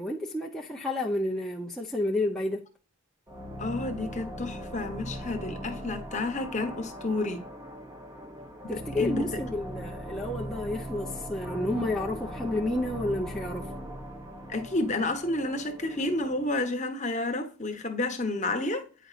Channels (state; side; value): normal; both; correlation 0.58